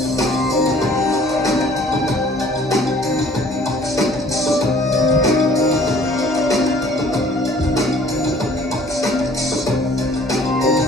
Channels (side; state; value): both; normal; correlation 0.55